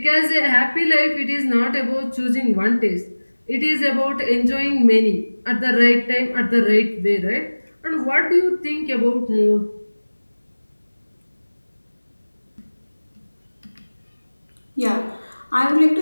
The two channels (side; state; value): both; inverted; correlation -1.00